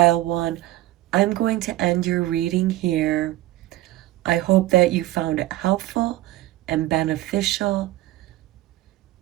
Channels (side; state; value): left; quieter; 16.3 dB